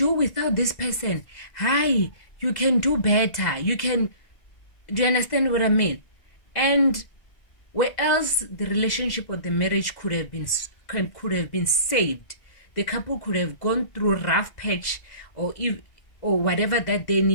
without this person. Hi, you can do better. Do you understand what I mean? And where else the relationship or the marriage could have been saved, the couple could have gone through a rough patch or whatever that they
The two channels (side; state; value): right; late; 2.0 ms